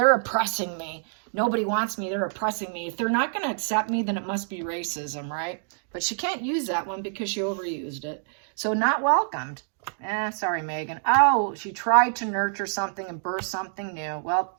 oppressing me. Nobody wants me. They're oppressing me. If they're not going to accept me, then it must be racism, right? But she can't use that one because she overused it. So not welcomed. Sorry, Megan. Oh, she tried to nurture something and birth something new. Well,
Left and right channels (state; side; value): silent; left; digital silence